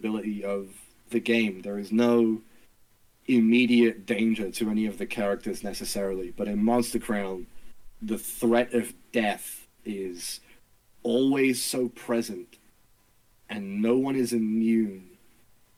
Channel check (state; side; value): identical; both; correlation 1.00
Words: of the game. There is no immediate danger to any of the characters necessarily, but in Monster Crown, the threat of death is always so present, and no one is immune